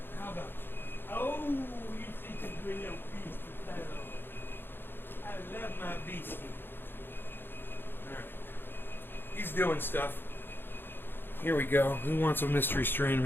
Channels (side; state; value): right; late; 0.10 ms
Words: How about you? Oh, you think you bring your beast to fellow. I love my beastie. Alright. He's doing stuff. Here we go. Who wants a mystery strain